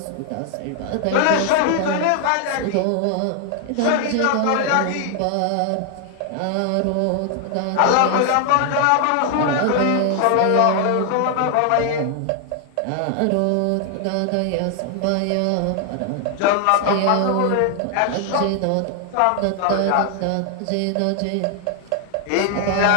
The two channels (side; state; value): both; different; correlation 0.00